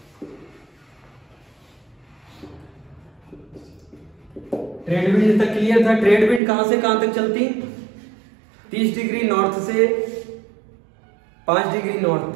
ट्रेड विंड तक क्लियर था। ट्रेड विंड कहां से कहां तक चलती? 30 डिग्री नॉर्थ से 5 डिग्री नॉर्थ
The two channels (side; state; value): left; drops out; at 6.4 s